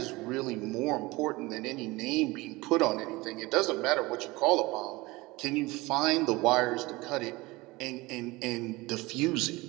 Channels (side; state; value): left; quieter; 21.9 dB